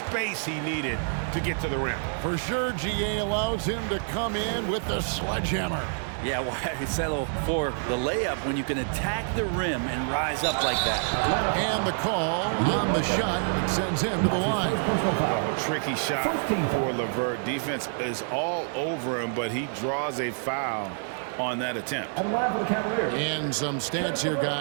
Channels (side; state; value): left; silent; digital silence